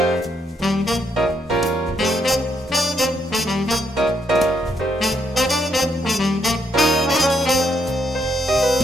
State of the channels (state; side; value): normal; both; correlation 0.76